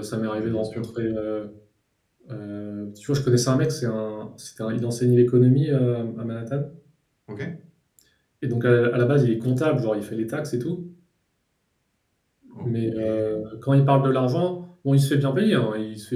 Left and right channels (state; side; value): identical; both; correlation 1.00